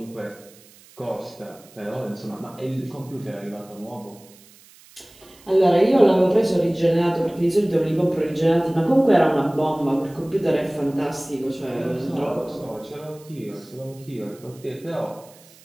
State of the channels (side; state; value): right; noise; hiss, 25 dB below the sound